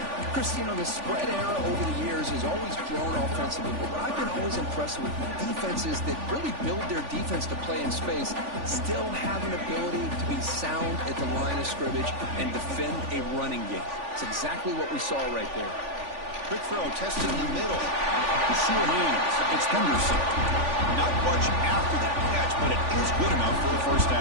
Chris, you know, the spread era over the years has always grown offensively, but I've been always impressed with defenses that really build their defense to play in space, still have an ability to be sound at the line of scrimmage and defend a running game. It's exactly what we saw right there. Quick throw, testing the middle. The sure hands. It's Henderson. Not much after that catch, but it is good enough for a first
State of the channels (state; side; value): late; left; 3.5 ms